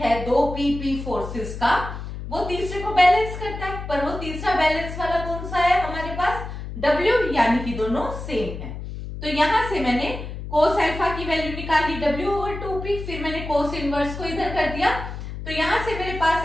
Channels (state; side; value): noise; left; hum, 8 dB below the sound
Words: है दो PP फोर्सेस का, वो तीसरे को बैलेंस करता है, पर वो तीसरा बैलेंस वाला कौन सा है हमारे पास, W, यानी कि दोनों सेम है। तो यहां से मैंने cos अल्फा की वैल्यू निकाली W ओवर 2P, फिर मैंने cos इनवर्स को इधर कर दिया, तो यहां से मेरे